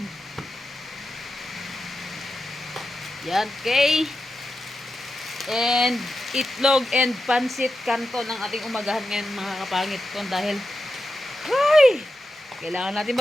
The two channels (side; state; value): both; normal; correlation 0.90